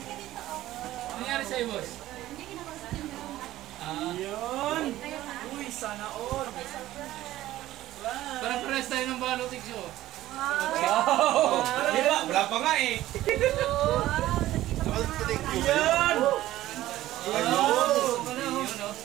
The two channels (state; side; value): quieter; left; 14.9 dB